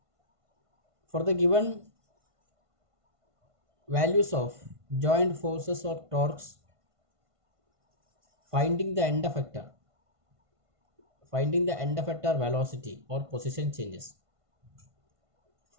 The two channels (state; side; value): late; left; 1.5 ms